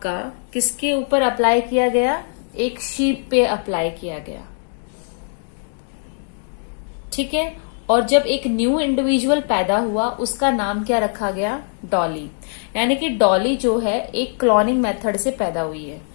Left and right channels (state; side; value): silent; right; 64 dB below the other